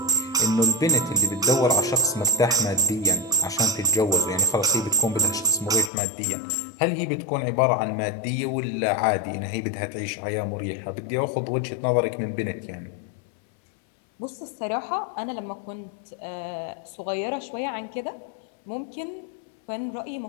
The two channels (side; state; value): right; drops out; at 5.9 s